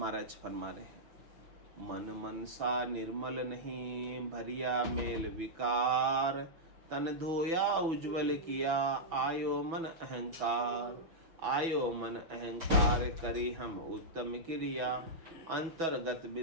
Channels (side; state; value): left; late; 6.1 ms